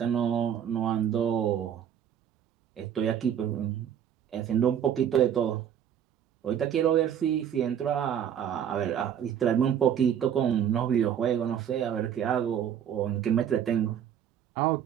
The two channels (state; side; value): quieter; left; 9.2 dB